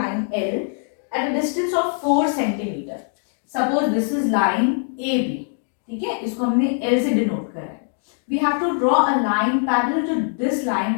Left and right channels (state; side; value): silent; right; 64 dB below the other